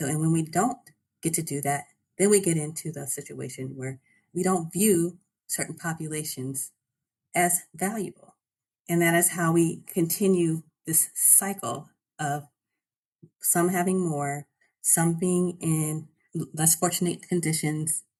we don't get to do that, then we get into the situation where we don't view certain populations as valuable. And that is how we continue this cycle of some having more, some being in less fortunate conditions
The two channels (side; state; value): both; identical; correlation 1.00